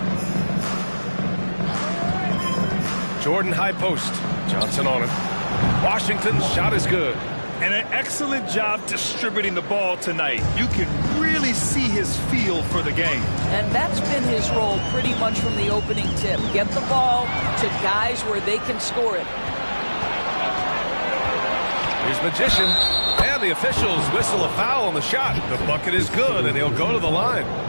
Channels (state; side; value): inverted; both; correlation -1.00